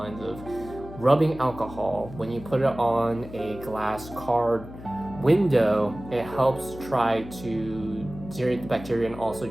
of rubbing alcohol when you put it on a glass car window, it helps try to deteriorate the bacteria, and also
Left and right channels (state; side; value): noise; left; hum, 14 dB below the sound